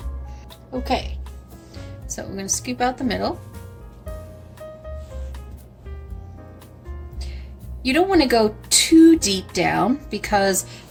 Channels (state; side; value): identical; both; correlation 1.00